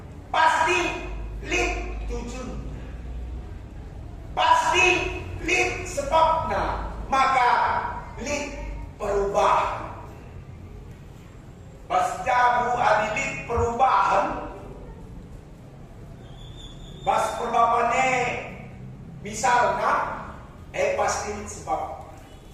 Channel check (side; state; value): both; identical; correlation 1.00